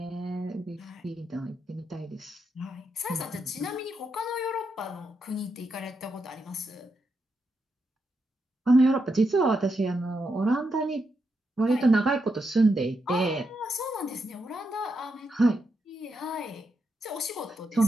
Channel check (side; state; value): both; normal; correlation 0.83